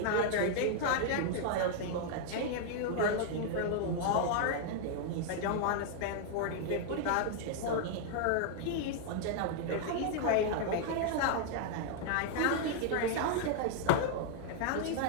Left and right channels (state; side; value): different; both; correlation 0.00